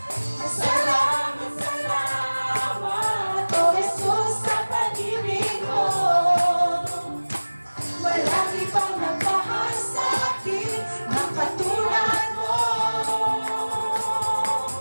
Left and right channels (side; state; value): both; inverted; correlation -1.00